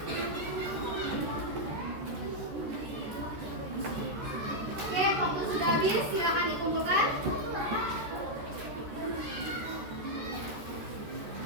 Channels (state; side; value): late; left; 13 ms